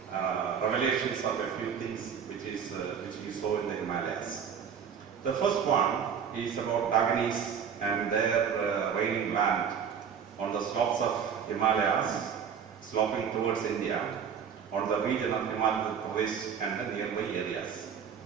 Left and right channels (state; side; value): quieter; left; 7.4 dB